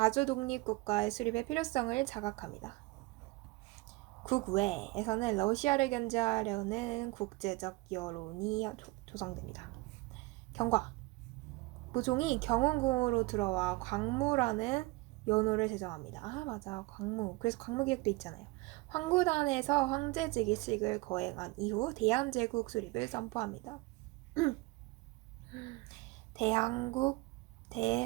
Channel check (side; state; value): left; quieter; 22.1 dB